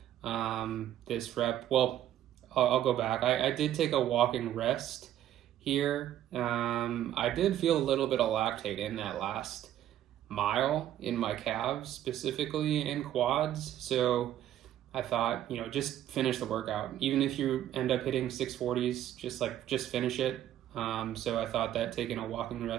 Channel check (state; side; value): quieter; left; 11.9 dB